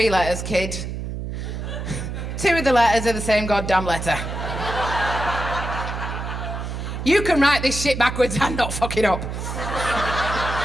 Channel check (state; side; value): noise; right; hum, 5 dB below the sound